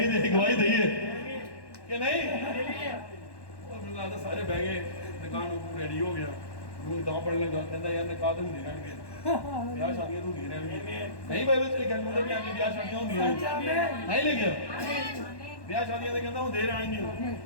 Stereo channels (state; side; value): late; right; 1.1 ms